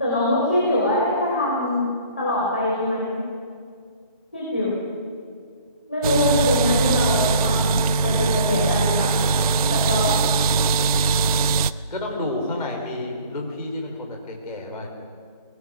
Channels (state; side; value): inverted; both; correlation -0.52